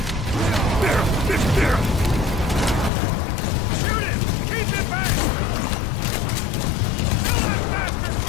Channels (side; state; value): right; drops out; at 2.9 s